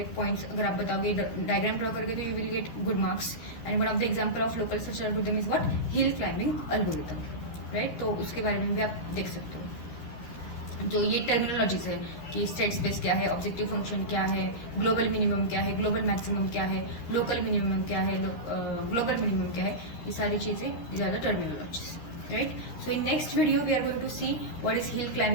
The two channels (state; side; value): late; right; 13 ms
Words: पॉइंट्स अगर आप बताओगे, डायग्राम ड्रॉ करके, तो you will get good marks. And one of the example of local search algorithm is what, hill climbing algorithm, right. तो उसके बारे में भी आप देख सकते हो। जो ये टर्मिनोलॉजीज है, कि स्टेट स्पेस क्या है, ऑब्जेक्टिव फंक्शन क्या है, ग्लोबल मिनिमम क्या है, ग्लोबल मैक्सिमम क्या है, लोकल मिनिमम क्या है, ग्लोबल मिनिमम क्या है, ये सारी चीज़ें, these are the terminologies, right? So in next video we are going to see what is hill